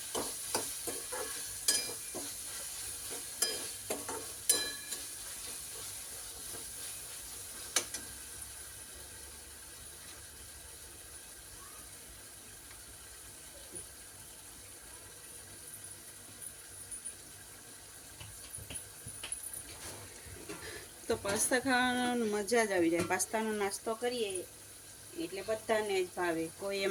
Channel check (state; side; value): identical; both; correlation 1.00